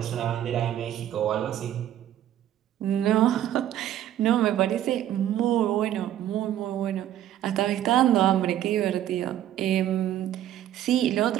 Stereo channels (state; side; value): quieter; left; 11.8 dB